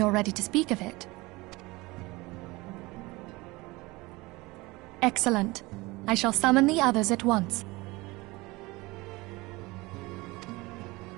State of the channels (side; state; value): left; quieter; 22.3 dB